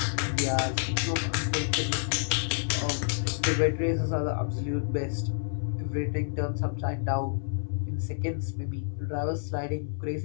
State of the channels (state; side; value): silent; right; 57 dB below the other